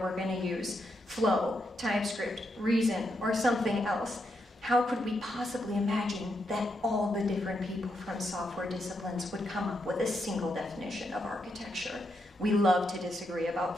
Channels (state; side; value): normal; both; correlation 0.81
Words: going to use Flow, TypeScript, Reason, or something else. How could we possibly imagine that all the different people from software disciplines would come up with a single definition of architecture? We love to disagree